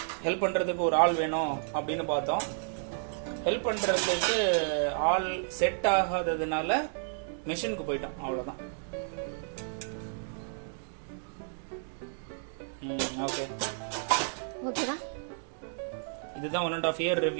ஹெல்ப் பண்ணுறதுக்கு ஒரு ஆள் வேணும் அப்படின்னு பார்த்தோம். ஹெல்ப் பண்ணுறதுக்கு ஆள் செட் ஆகாததுனால மிஷினுக்கு போயிட்டோம், அவ்வளோதான். ஓகே ஓகேடா. இதுதான் 1.5 இயர்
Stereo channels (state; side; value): silent; left; digital silence